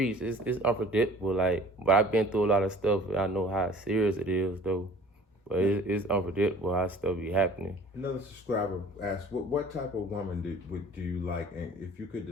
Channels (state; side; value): normal; both; correlation 0.49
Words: it's unpredictable. Like, but I've been through a lot of stuff, and I know how serious it is, though. But it's unpredictable how stuff be happening. Another subscriber asked, what type of woman do you like? And if you could